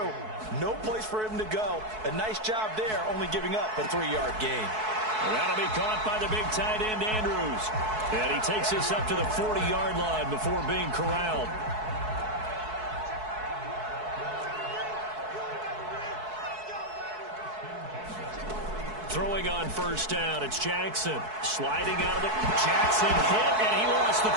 No place for him to go. A nice job there, only giving up a 3-yard gain. And that'll be caught by the big tight end, Andrews. And he takes this up to the 40-yard line before being corralled. Throwing on first down, it's Jackson. Sliding out of the... Jackson hit, and he lost the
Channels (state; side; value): late; left; 4.6 ms